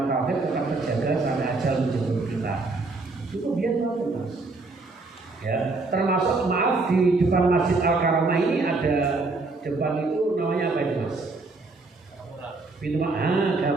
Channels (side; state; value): left; quieter; 3.6 dB